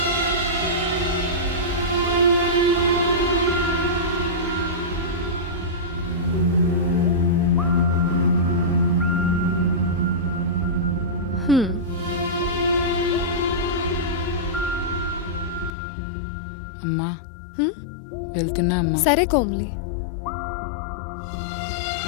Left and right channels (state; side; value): drops out; right; at 15.7 s